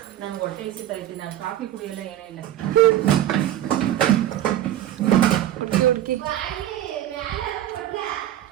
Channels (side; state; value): left; quieter; 12.1 dB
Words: ನಾನು ಹೊಟ್ಟೆ ಹಸಿತಾ ಐತಿ, ನಾನು ಕಾಫಿ ಕುಡಿಯಲ್ಲ, ಏನೇ ಇಲ್ಲ.